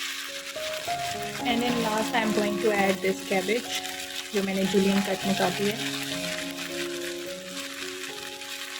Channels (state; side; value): identical; both; correlation 1.00